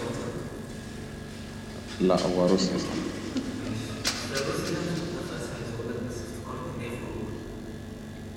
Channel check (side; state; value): both; identical; correlation 1.00